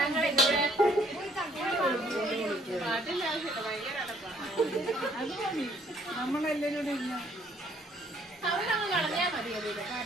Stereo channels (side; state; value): both; normal; correlation 0.63